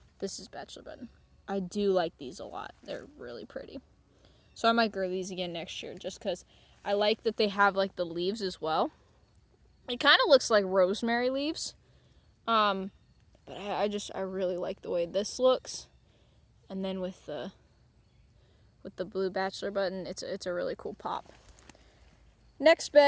This is bachelor button. I do like these a lot. They're really pretty. So I might grow these again next year just because I like that they have the leaves as well. It kind of looks like rosemary leaves. But But I really like the way this looks. And then with the blue bachelor button, it's a really cool pop. Next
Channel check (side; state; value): both; identical; correlation 1.00